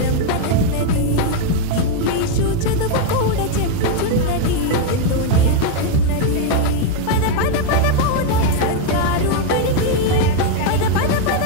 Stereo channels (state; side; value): different; both; correlation 0.01